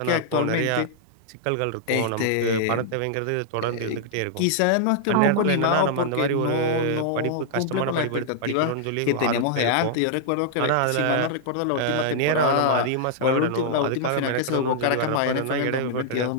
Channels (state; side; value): different; both; correlation -0.01